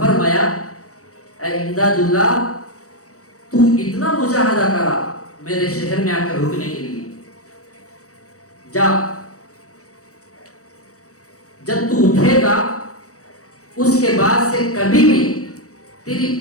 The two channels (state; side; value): late; right; 0.65 ms